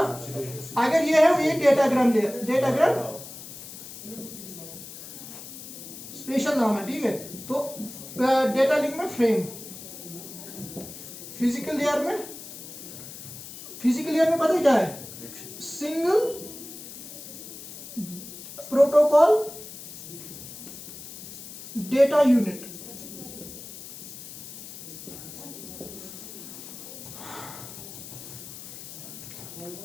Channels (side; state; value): left; noise; hiss, 13 dB below the sound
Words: अगर ये है, ये डेटाग्राम लेयर, स्पेशल नाम है, ठीक है। तो डेटा लिंक में फ्रेम, फिजिकल लेयर में पता है क्या है, सिंगल प्रोटोकॉल डेटा यूनिट।